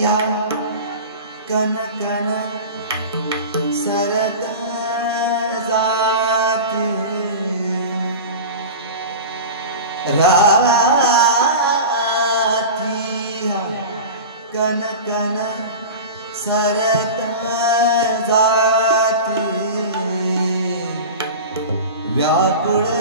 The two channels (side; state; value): both; inverted; correlation -0.31